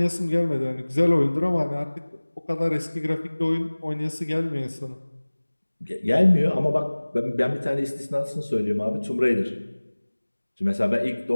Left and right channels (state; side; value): inverted; both; correlation -1.00